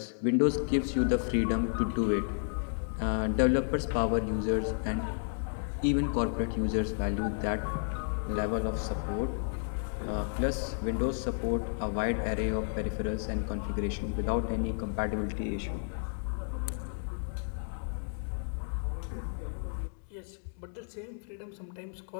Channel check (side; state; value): right; silent; digital silence